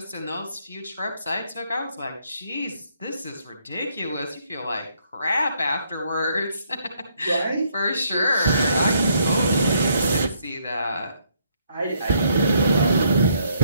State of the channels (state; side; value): inverted; both; correlation -0.71